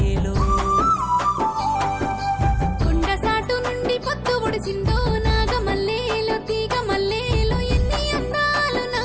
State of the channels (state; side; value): identical; both; correlation 1.00